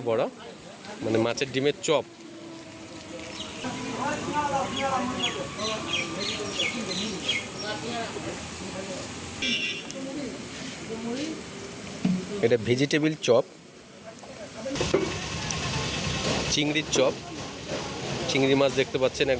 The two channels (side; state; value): both; identical; correlation 1.00